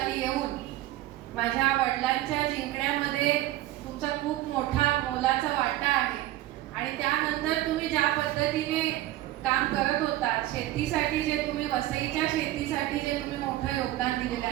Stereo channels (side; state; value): left; quieter; 15.3 dB